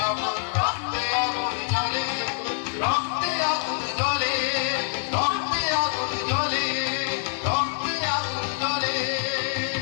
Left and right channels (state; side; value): silent; right; 59 dB below the other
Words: না কর, রক্তে আগুন জ্বলে, রক্তে আগুন জ্বলে, রক্তে আগুন জ্বলে, রক্তে আগুন জ্বলে।